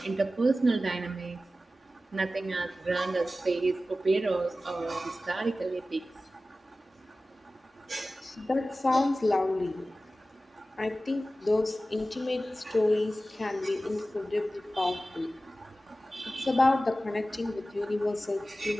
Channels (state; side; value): normal; both; correlation 0.95